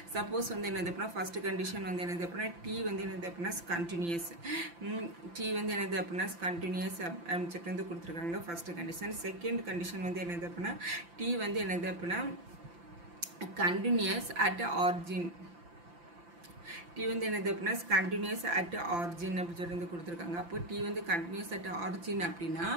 சப்போஸ் வந்து என்னது அப்படின்னா ஃபர்ஸ்ட் கண்டிஷன் வந்து என்னது அப்படின்னா டி வந்து என்னது அப்படின்னா கண்டினியூஸ். டி வந்து என்னது அப்படின்னா கண்டினியூஸ் அப்படின்னு சொல்லிட்டு வந்து கொடுத்துருக்காங்க ஃபர்ஸ்ட் கண்டிஷன். செகண்ட் கண்டிஷன் வந்து என்னது அப்படின்னா டி வந்து என்னது அப்படின்னா கண்டினியூஸ் அட் ஆரிஜின். டி வந்து என்னது அப்படின்னா கண்டினியூஸ் அட் ஆரிஜின் அப்படின்னு சொல்லி வந்து கொடுத்துருக்காங்க. அப்போ டி வந்து கண்டினியூஸ் அட் ஆரிஜின் அப்படின்னா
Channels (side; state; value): left; late; 5.9 ms